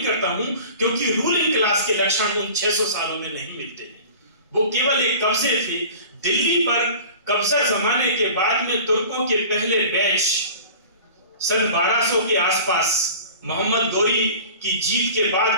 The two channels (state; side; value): inverted; both; correlation -0.41